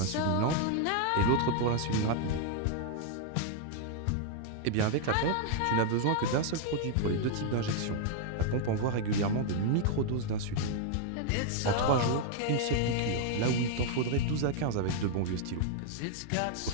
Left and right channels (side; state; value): both; different; correlation 0.00